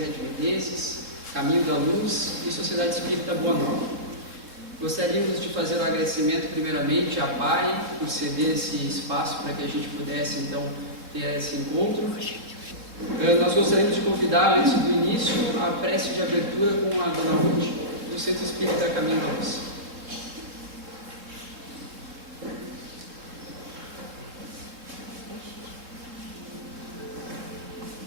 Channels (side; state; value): left; late; 3.6 ms